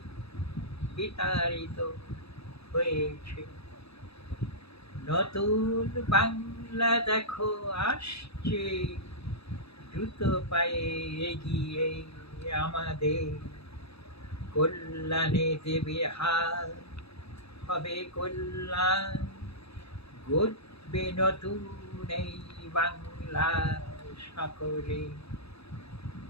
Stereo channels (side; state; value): right; late; 0.78 ms